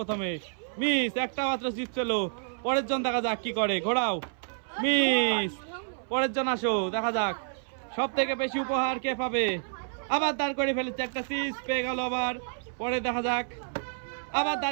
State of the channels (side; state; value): left; silent; 58 dB below the other